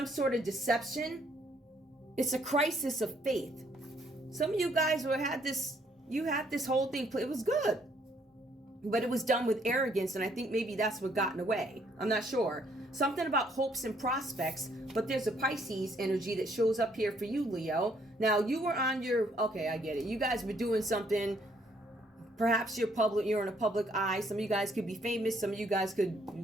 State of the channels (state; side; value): normal; both; correlation 0.67